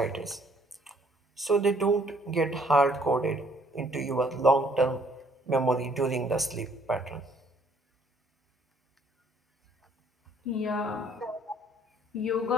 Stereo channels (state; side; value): normal; both; correlation 0.63